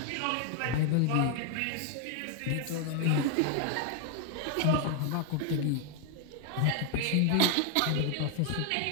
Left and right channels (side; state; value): both; different; correlation 0.00